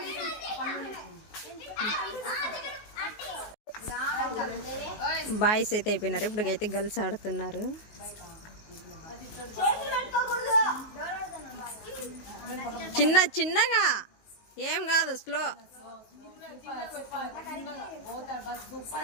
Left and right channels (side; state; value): right; late; 19 ms